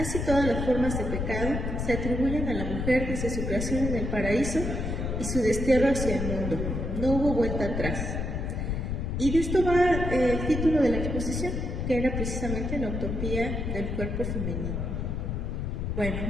todas las formas de pecado se atribuyen a la mujer desde su creación en el paraíso y su destierro hacia el mundo. No hubo vuelta atrás. Y de esto va el título de la exposición, que era precisamente la utopía del cuerpo femenino. Bueno,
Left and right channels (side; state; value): left; noise; rumble, 2 dB below the sound